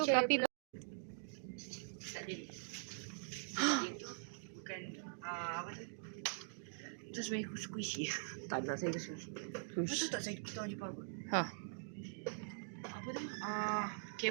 kapi. Tak jadi. Dia tu bukan apa tu? Itu sebenarnya squishy. Tak ada saya squishy. Betul tak saya kita orang Jepang kot? Ha. Apa tu?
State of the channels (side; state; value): left; silent; digital silence